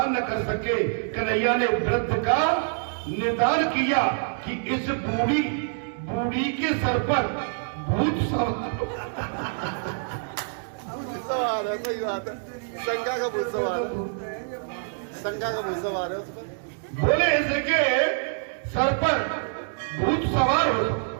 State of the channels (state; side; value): silent; left; digital silence